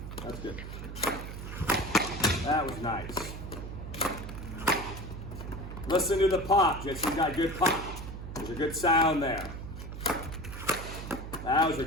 That's good. That was nice. Listen to the pop. Jesse's got a good pop. There's a good sound there. That was a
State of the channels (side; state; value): right; noise; hum, 9 dB below the sound